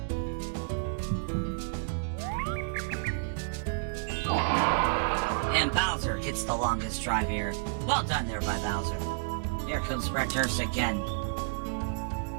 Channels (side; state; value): left; silent; digital silence